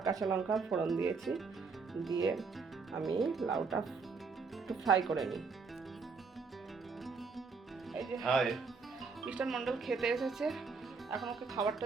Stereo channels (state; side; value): quieter; left; 4.8 dB